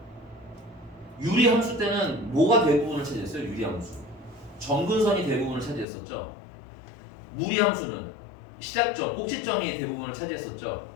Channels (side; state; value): right; drops out; at 5.9 s